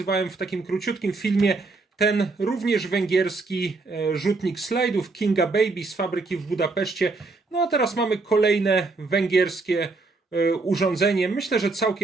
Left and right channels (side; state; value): left; quieter; 3.7 dB